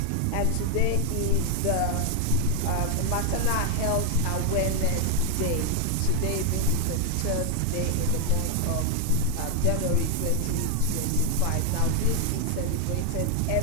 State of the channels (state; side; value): different; both; correlation 0.00